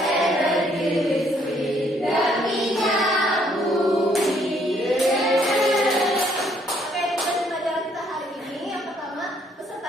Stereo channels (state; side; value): normal; both; correlation 0.67